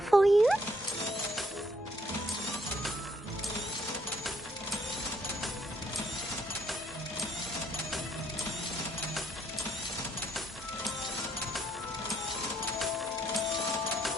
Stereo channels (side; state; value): both; normal; correlation 0.69